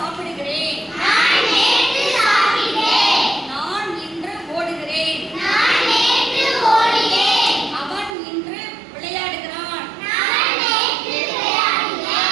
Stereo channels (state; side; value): drops out; left; at 8.2 s